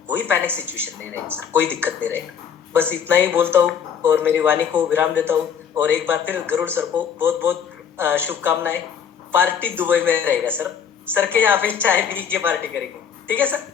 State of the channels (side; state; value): right; quieter; 7.6 dB